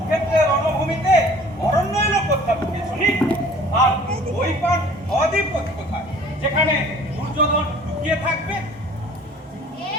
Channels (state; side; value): normal; both; correlation 0.50